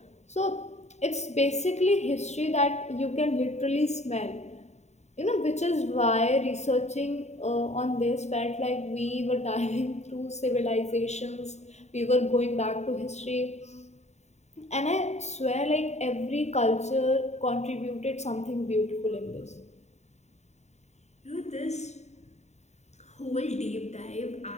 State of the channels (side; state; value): right; late; 0.32 ms